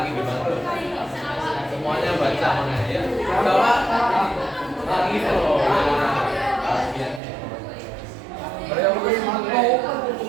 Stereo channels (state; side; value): drops out; left; at 7.2 s